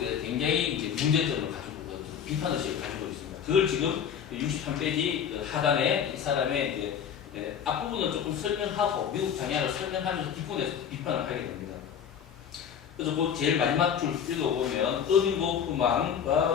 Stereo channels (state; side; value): quieter; right; 8.1 dB